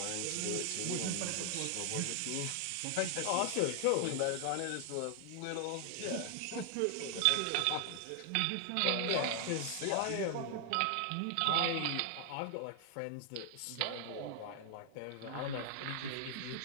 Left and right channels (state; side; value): different; both; correlation 0.00